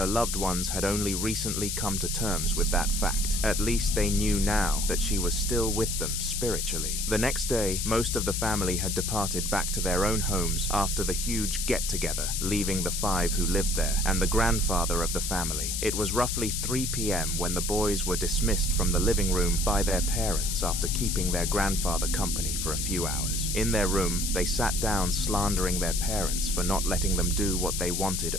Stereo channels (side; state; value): left; noise; hiss, 2 dB below the sound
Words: loved ones had only recently come to terms with that fact. At least they knew now that she was still with them spiritually. The next day, most of the family had departed back to their own homes after the huge get-together, leaving the 5 who lived there and the grandfather of the family. It was roughly 3 p.m. when the boys were dismissed from the living room by their parents after keeping their grandfather company for a few hours. In their room, they sat down slandering their parents for not letting them do what they wanted